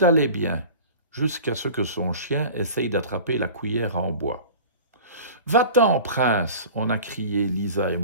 allait bien, jusqu'à ce que son chien essaye d'attraper la cuillère en bois. « Va-t'en, prince !» on a crié, Lisa et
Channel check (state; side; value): inverted; both; correlation -0.39